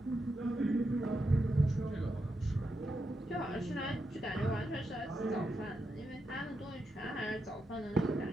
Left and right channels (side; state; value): both; normal; correlation 0.85